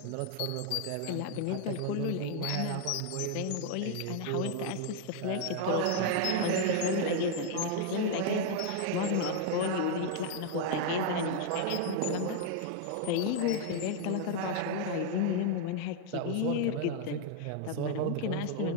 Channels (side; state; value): both; different; correlation 0.00